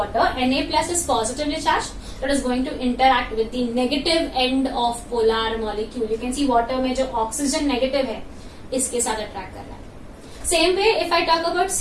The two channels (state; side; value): identical; both; correlation 1.00